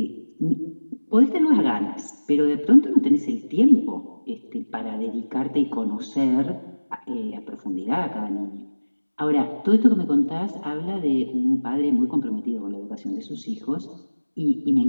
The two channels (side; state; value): both; inverted; correlation -1.00